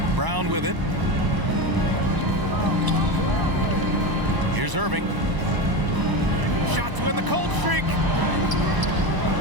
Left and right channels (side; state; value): left; late; 1.0 ms